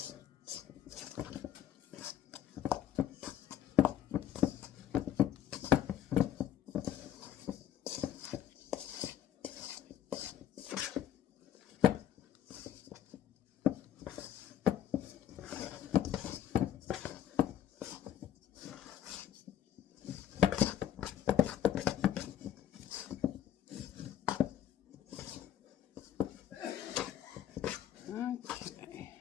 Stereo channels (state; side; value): quieter; right; 10.7 dB